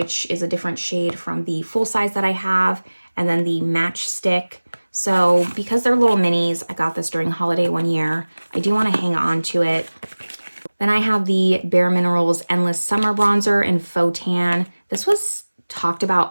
is a different shade from the full size that I have, and then the match stick. So because they're little minis, I got this during holiday one year. I do want to hang on to it. Then I have the Bare Minerals Endless Summer Bronzer in Faux Tan. This was talked about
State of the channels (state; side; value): inverted; both; correlation -1.00